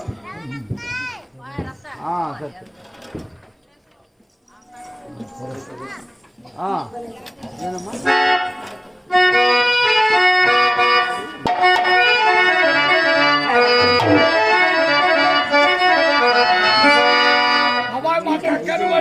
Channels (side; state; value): both; identical; correlation 1.00